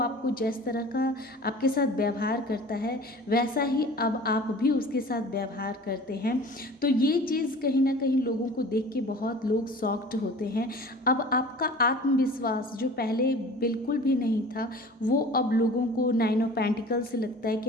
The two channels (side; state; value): both; normal; correlation 0.42